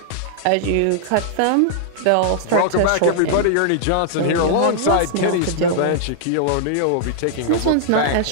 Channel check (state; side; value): different; both; correlation -0.01